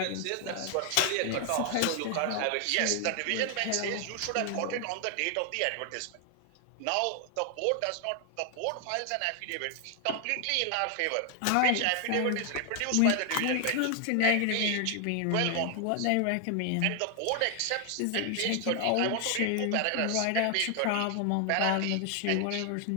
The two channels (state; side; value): different; both; correlation 0.00